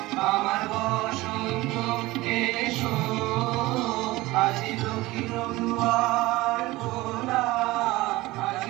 আমার বসন্ত এসো আজি দক্ষিণ দুয়ার খোলা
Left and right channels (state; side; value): quieter; left; 19.5 dB